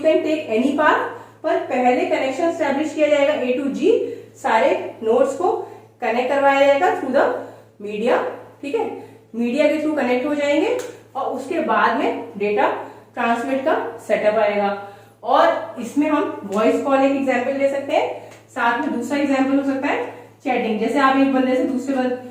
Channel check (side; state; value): both; identical; correlation 1.00